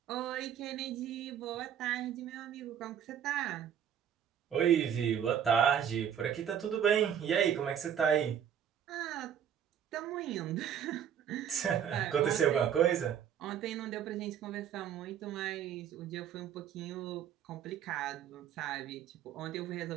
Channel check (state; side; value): quieter; left; 9.0 dB